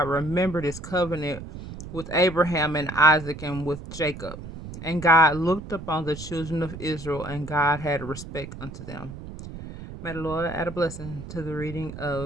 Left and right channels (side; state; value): right; noise; rumble, 11 dB below the sound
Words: remembered his covenant with Abraham and Isaac and with Jacob. And God looked upon the children of Israel, and God had respect unto them. May the Lord add a blessing to the reading